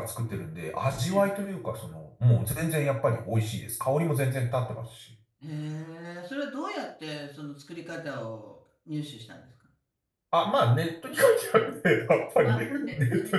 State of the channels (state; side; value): identical; both; correlation 1.00